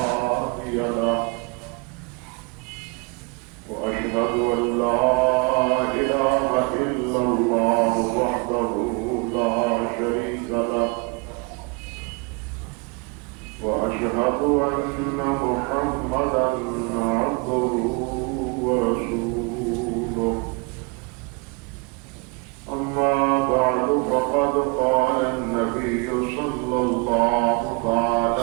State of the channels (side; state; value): left; quieter; 29.9 dB